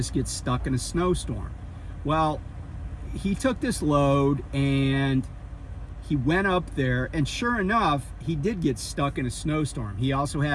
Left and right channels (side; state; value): both; identical; correlation 1.00